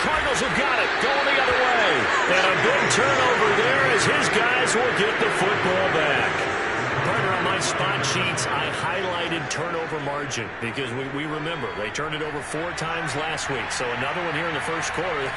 Cardinals have got it. Going the other way. And a big turnover there as his guys will get the football back. Partner, on my spot sheets, I highlighted turnover margin because we remember they turned it over 4 times last week. So another one here in the first quarter.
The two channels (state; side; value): identical; both; correlation 1.00